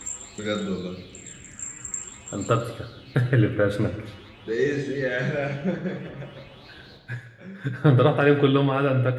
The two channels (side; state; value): both; identical; correlation 1.00